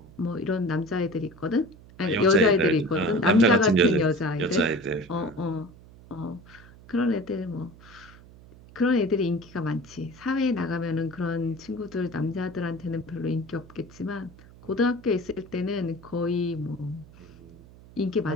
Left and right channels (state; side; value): noise; right; hum, 21 dB below the sound